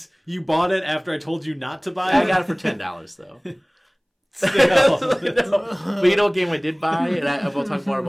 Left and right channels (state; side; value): identical; both; correlation 1.00